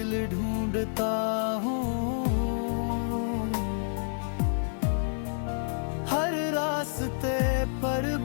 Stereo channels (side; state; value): right; silent; digital silence